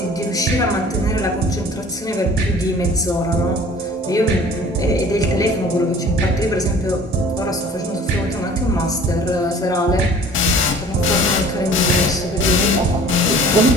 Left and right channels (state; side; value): normal; both; correlation 0.48